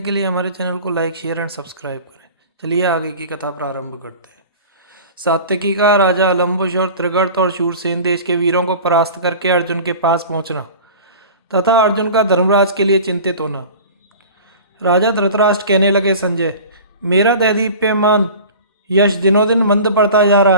के लिए हमारे चैनल को लाइक शेयर एंड सब्सक्राइब करें। चलिए आगे की कथा प्रारंभ करते हैं। सात्यकी का राजा अलम्बुश और त्रिगर्त और शूरसेन देश के वीरों को परास्त करके अर्जुन के पास पहुंचना तथा अर्जुन का धर्मराज के लिए चिंतित होना। राजा धृतराष्ट्र कहने लगे, संजय, मेरा दैदीप्यमान यश दिनों दिन मंद पड़ता जा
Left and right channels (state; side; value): inverted; both; correlation -0.39